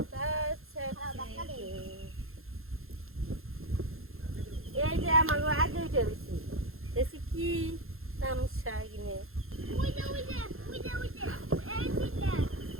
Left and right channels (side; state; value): left; late; 0.61 ms